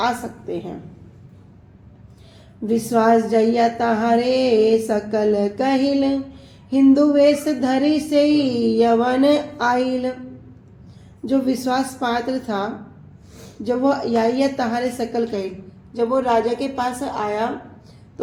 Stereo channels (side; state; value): both; identical; correlation 1.00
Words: सकते हैं। विश्वास जइया तहारे सकल कहिल हिंदू वेश धरी से यवन आइल। जो विश्वास पात्र था, जब वो या तहारे सकल कहिल, जब वो राजा के पास आया